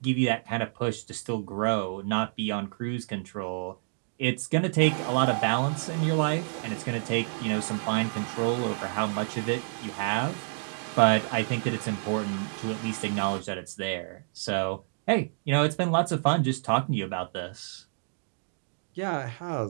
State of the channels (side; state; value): left; silent; digital silence